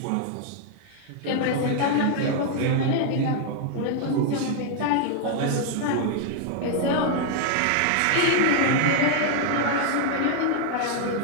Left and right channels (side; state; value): both; different; correlation 0.00